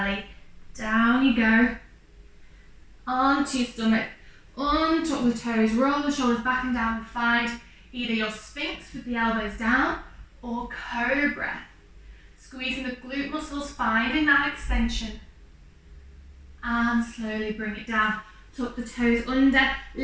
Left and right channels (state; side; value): identical; both; correlation 1.00